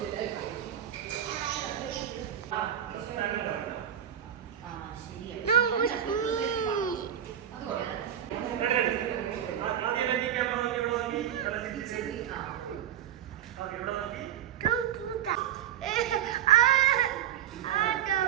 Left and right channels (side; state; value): left; quieter; 10.3 dB